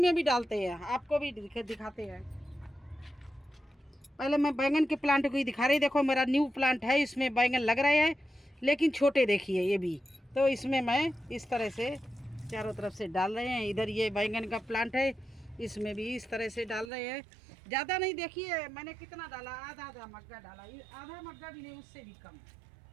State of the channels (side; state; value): left; drops out; at 16.9 s